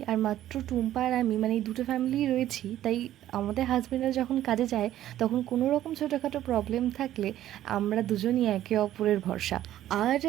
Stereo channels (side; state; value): left; quieter; 12.9 dB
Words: আর মাত্র টুম্পা আর আমি, মানে এই 2টো ফ্যামিলিই রয়েছি, তাই আমাদের হাজব্যান্ডরা যখন কাজে যায় তখন কোনো রকম ছোটোখাটো প্রবলেম থাকলে আমরা দুজনই একে অপরের ভরসা। আর